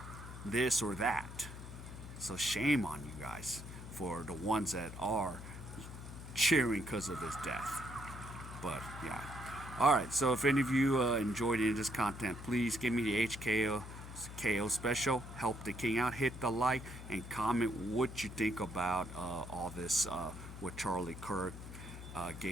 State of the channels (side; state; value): left; noise; hum, 11 dB below the sound